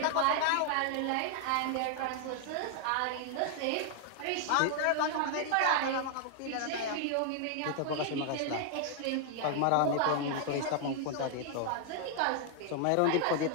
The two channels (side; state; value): both; different; correlation 0.00